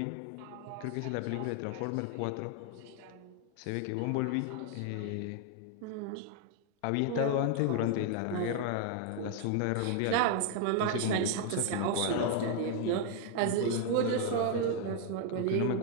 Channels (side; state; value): both; different; correlation 0.00